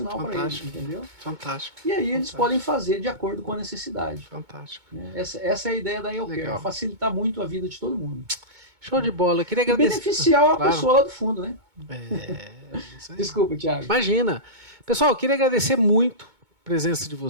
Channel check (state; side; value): late; left; 2.2 ms